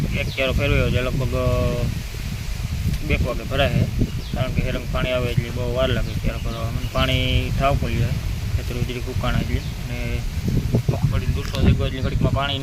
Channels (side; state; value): both; identical; correlation 1.00